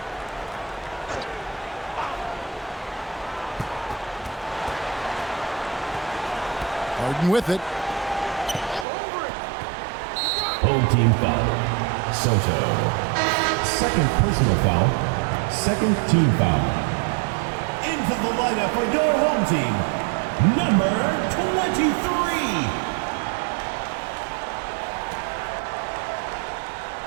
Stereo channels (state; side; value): drops out; left; at 8.8 s